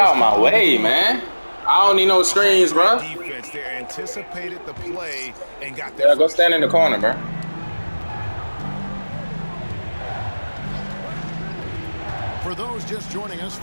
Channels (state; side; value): inverted; both; correlation -1.00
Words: my way, man. I don't need no screens, bro. Defense there anticipated the play and got Yeah, go stand in the corner, bro. For those just joining us,